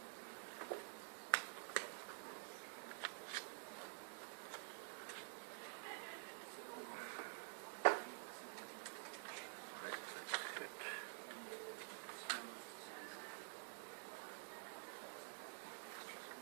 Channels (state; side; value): silent; left; digital silence